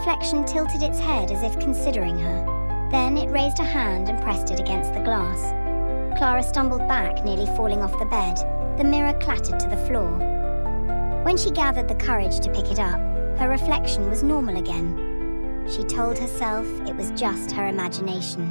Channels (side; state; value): both; inverted; correlation -1.00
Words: tilted its head as if considering her. Then it raised a hand and pressed it against the glass. Clara stumbled back, nearly falling off the bed. The mirror clattered to the floor. When she gathered the courage to pick it up, her reflection was normal again. She told herself it was just her